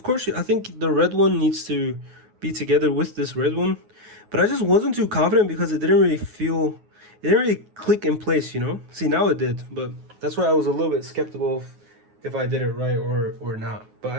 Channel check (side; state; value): left; late; 9.5 ms